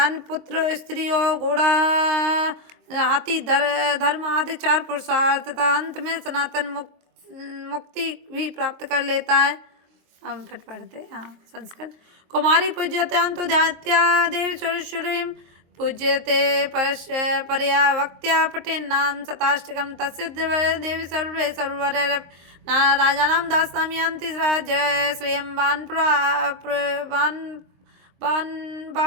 पुत्र स्त्री और घोड़ा हाथी धर्म आदि 4 पुरुषार्थ तथा अंत में सनातन मुक्ति भी प्राप्त कर लेता है। हम फिर पढ़ते हैं संस्कृत। कुमारी पूज्यतांतो ध्यात्या देवी सुरेश्वरीं पूज्यते परया वक्त्या पठेन् नाम शताष्टकं तस्य देवी सर्वे सर्ववर राजानां दास्यामि यान्ति जय श्रियं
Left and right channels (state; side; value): late; left; 23 ms